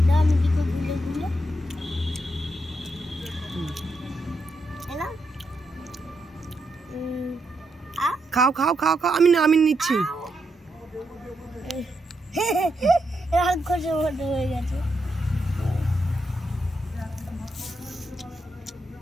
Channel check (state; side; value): normal; both; correlation 0.82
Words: দাও আমি দিকে গুলে গুলে এলাম খাও খাও খাও খাও, আমি নিচ্ছি। রাক্ষসের মতো হয়ে গেছে।